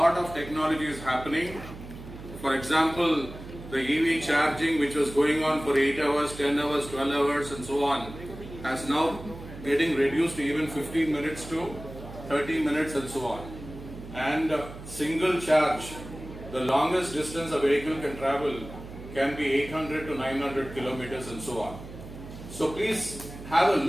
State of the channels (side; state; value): right; noise; hum, 14 dB below the sound